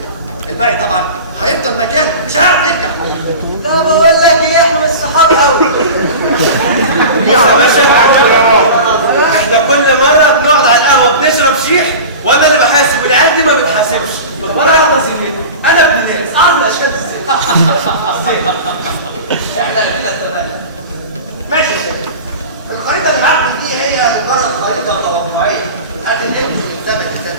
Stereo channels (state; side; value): inverted; both; correlation -0.33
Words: الباقي طبعا هيفضل مكانه مش هيعرف يرجع. لا بقول لك ايه، احنا مش صحاب قوي. يا باشا احنا كل مره بنقعد على القهوه بنشرب شيح وانا اللي بحاسب والعيال دي ما بتحاسبش، وانا واحده زميلتي انا ابن ناس اعرف الاشكال ازاي. احنا كده اتفقنا. ماشي يا شباب، الخريطه اللي معاكم دي هي مجرد خريطه توقعيه هتنقل من زمن لزمن،